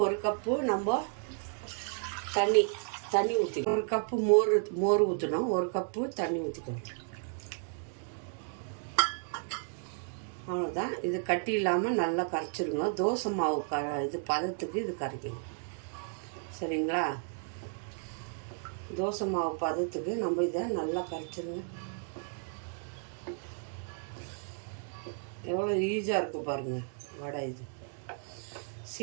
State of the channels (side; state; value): left; silent; 56 dB below the other